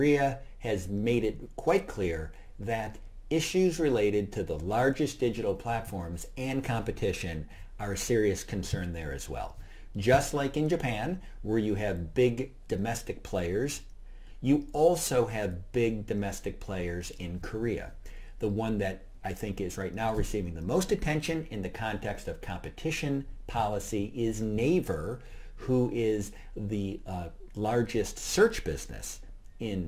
has made it quite clear that issues related to the largest digital platforms and competition are a serious concern there as well. Just like in Japan, where you have big domestic players, you also have big domestic players in Korea. The one that I think is right now receiving the most attention in the context of competition policy is Naver, who is the largest search business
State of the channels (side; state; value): both; identical; correlation 1.00